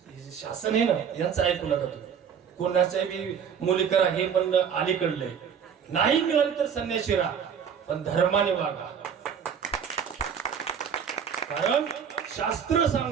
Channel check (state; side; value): quieter; left; 7.5 dB